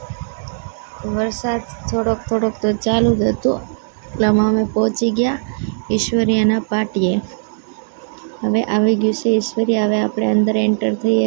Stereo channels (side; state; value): left; silent; digital silence